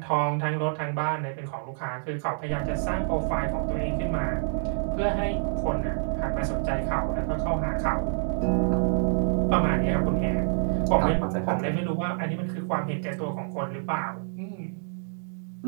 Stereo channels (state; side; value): silent; left; digital silence